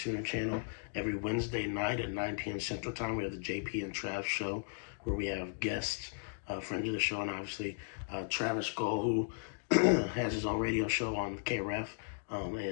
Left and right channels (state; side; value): silent; right; digital silence